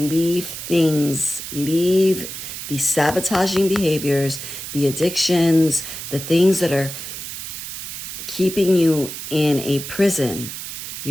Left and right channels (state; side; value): noise; right; hiss, 8 dB below the sound